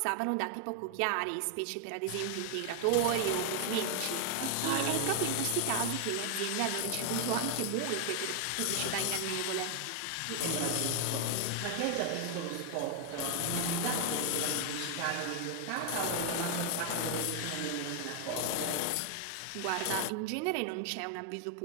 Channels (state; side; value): different; both; correlation 0.00